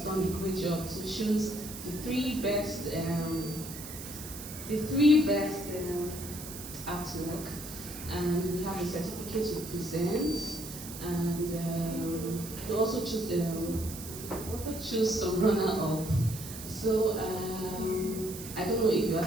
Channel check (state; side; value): noise; right; hiss, 11 dB below the sound